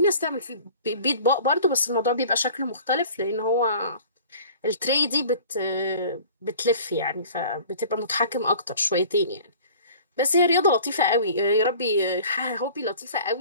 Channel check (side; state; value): both; inverted; correlation -0.46